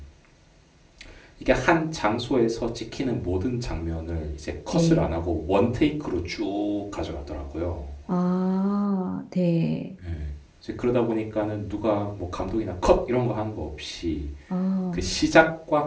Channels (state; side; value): identical; both; correlation 1.00